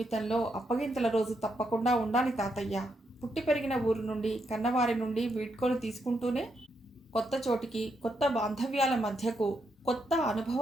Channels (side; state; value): both; normal; correlation 0.80